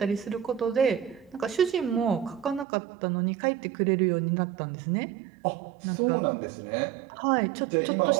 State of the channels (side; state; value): left; drops out; at 2.7 s